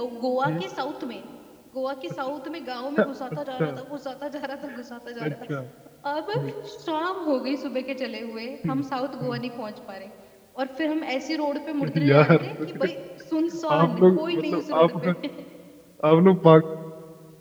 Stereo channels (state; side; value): identical; both; correlation 1.00